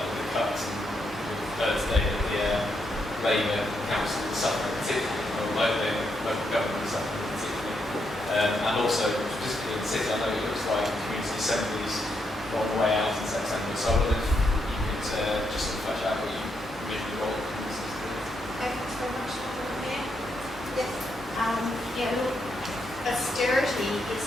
the cuts and with today that the Labour council is suffering particularly, or local government is suffering particularly. And also, specifically in the city, I know it looks like community assemblies are on the way out in September, so I wonder if you could just sort of flesh out what you envision the role of communities to do. Thanks very much. Yes. Yeah, look, austerity is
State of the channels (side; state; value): both; normal; correlation 0.79